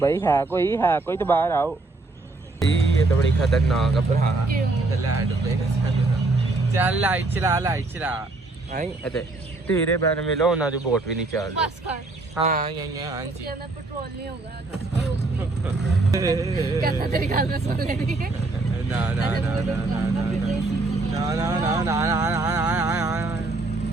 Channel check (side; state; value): left; quieter; 3.2 dB